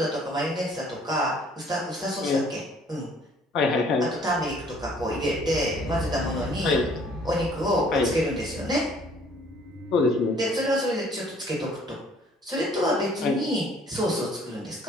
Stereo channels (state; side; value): normal; both; correlation 0.57